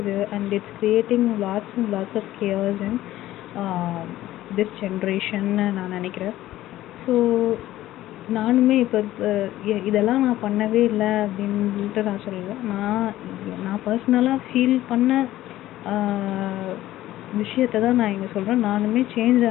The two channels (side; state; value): right; quieter; 14.8 dB